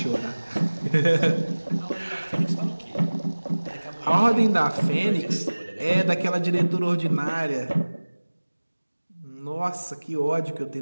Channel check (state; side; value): inverted; both; correlation -1.00